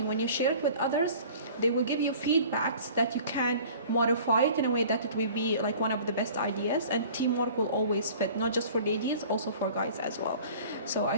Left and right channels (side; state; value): both; inverted; correlation -0.46